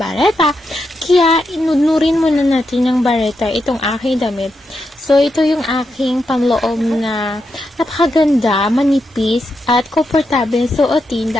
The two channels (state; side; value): normal; both; correlation 0.84